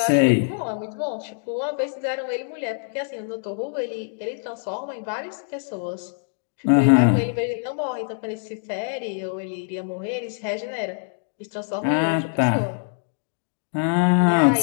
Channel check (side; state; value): right; silent; digital silence